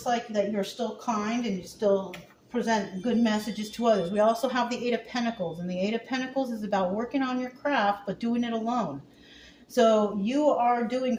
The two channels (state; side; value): identical; both; correlation 1.00